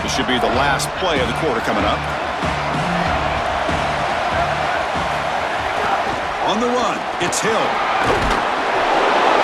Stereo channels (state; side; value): identical; both; correlation 1.00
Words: This should be the last play of the quarter coming up. On the run, it's Hill.